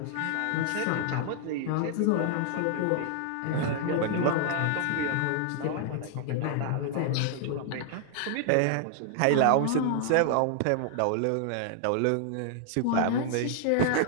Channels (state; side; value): different; both; correlation 0.00